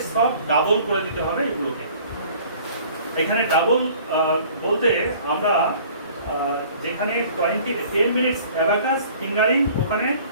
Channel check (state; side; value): inverted; both; correlation -0.51